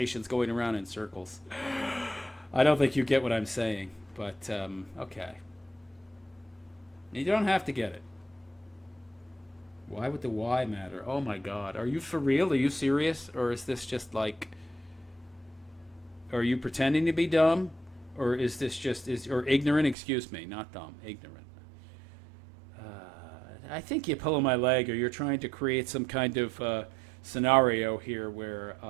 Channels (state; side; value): drops out; left; at 20.0 s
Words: going around in circles. I don't think you get what I'm saying, but okay. You don't have to get it. Why would the why matter? Oh my God. Are you for real? Are you serious? Or is this just like, are you pretending to be dumb? Or is this just, or ignorant? Excuse me, not dumb, ignorant. I think you're pulling my leg, or you're trying to create some kind of scenario here where